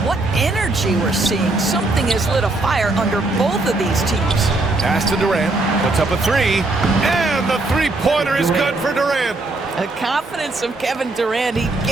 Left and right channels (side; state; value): left; quieter; 3.1 dB